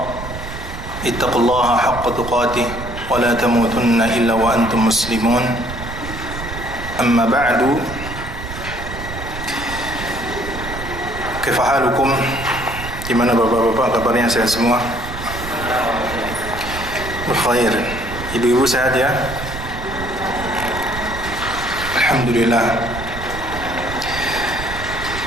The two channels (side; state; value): right; noise; rumble, 9 dB below the sound